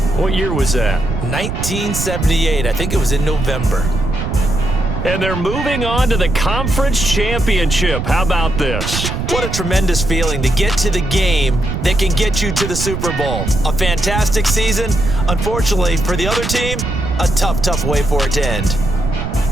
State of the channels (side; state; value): right; noise; rumble, 4 dB below the sound